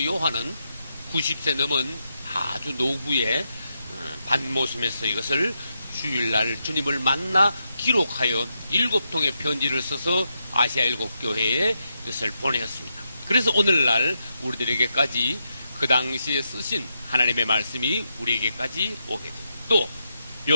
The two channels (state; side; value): inverted; both; correlation -0.83